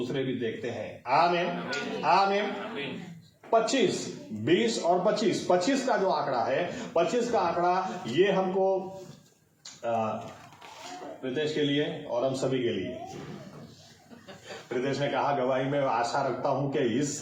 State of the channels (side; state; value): both; identical; correlation 1.00